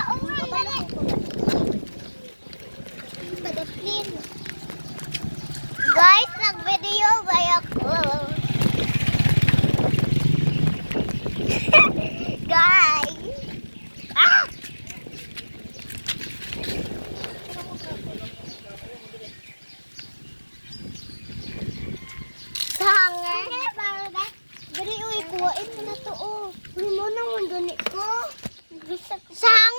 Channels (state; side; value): inverted; both; correlation -1.00